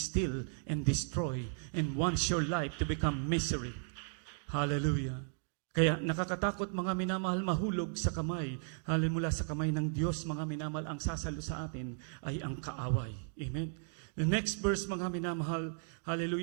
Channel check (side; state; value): left; silent; 54 dB below the other